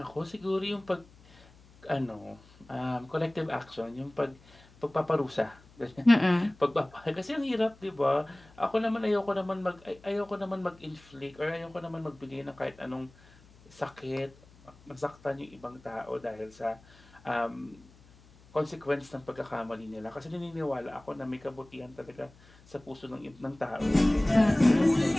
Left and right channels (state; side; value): noise; left; hum, 26 dB below the sound